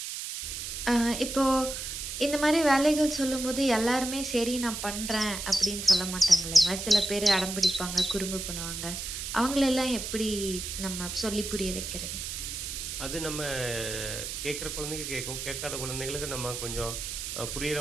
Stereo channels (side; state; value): right; noise; hiss, 6 dB below the sound